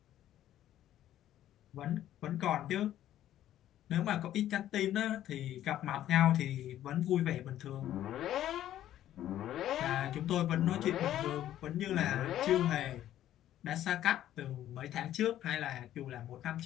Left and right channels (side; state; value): right; quieter; 12.3 dB